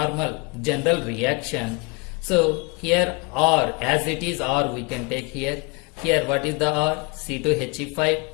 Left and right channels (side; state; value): right; quieter; 29.9 dB